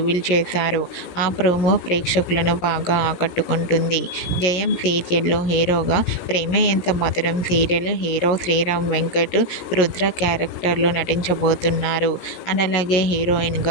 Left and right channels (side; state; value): right; late; 17 ms